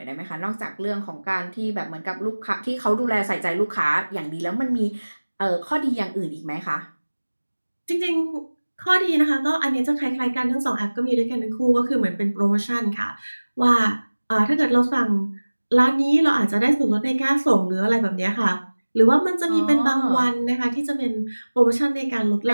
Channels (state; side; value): inverted; both; correlation -1.00